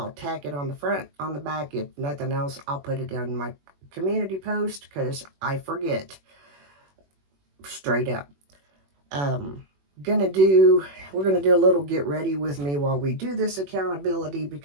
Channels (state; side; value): late; left; 21 ms